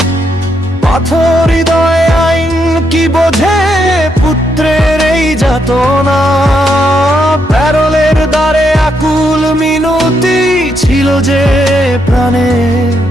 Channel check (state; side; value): normal; both; correlation 0.78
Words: পাথর হৃদয় আইন কি বোঝে পুত্রের এই যাতনা। প্যারোলের দ্বারে আকুল মিনতি ছিল যে প্রাণে,